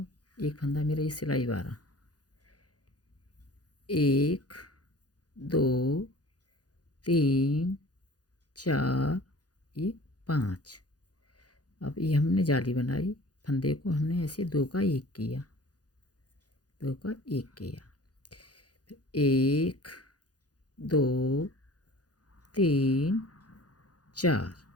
एक फंदा मेरा ये सिलाई वाला, 1 2 3 4 ये 5। अब ये हमने जाली बनाई, फंदे को हमने ऐसे 2 का 1 किया, 2 का 1 किया। 1 2 3 4,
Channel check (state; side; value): late; right; 0.68 ms